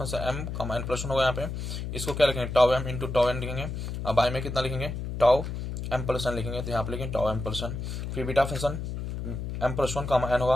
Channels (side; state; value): left; noise; hum, 5 dB below the sound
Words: m comma n plus one होगा यहाँ पे। इसको क्या लिखेंगे, tau m into tau n लिखेंगे। अब बाई में कितना लिखेंगे, टाउ m प्लस n लिखेंगे, तो यहाँ पे लिखेंगे टाउ m प्लस n। फिर बीटा फंक्शन m+1 कामा n